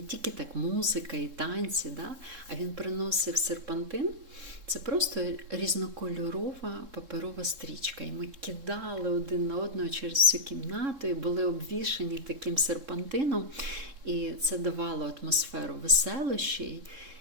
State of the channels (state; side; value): late; left; 3.7 ms